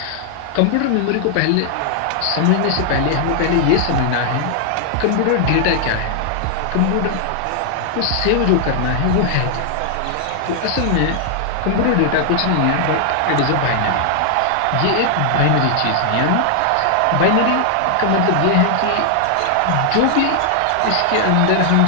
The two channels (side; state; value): both; different; correlation 0.00